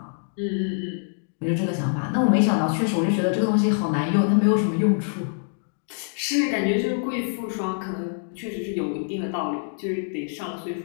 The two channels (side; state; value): right; silent; digital silence